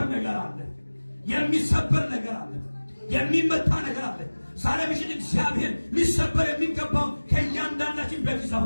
ነገር አለ። የሚሰበር ነገር አለ። የሚመታ ነገር አለ። ዛሬ ምሽት እግዚአብሔር ሊሰበር የሚገባው ከእያንዳንዳችን ቤት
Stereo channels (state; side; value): inverted; both; correlation -1.00